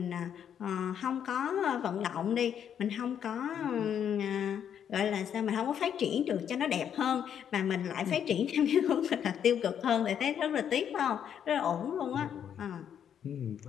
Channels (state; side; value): quieter; right; 8.8 dB